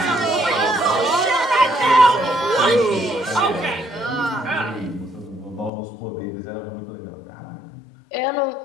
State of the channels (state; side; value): drops out; right; at 5.7 s